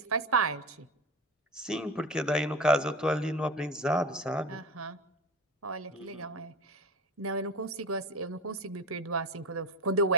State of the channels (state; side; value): normal; both; correlation 0.25